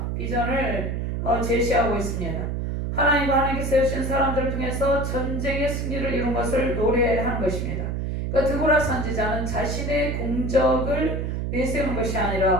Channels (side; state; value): right; noise; hum, 2 dB below the sound